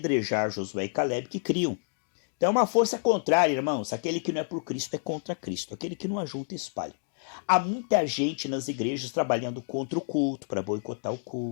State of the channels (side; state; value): right; silent; digital silence